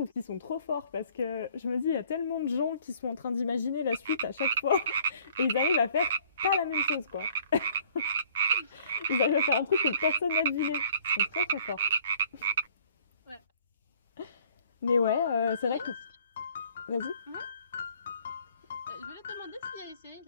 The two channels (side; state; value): both; inverted; correlation -0.57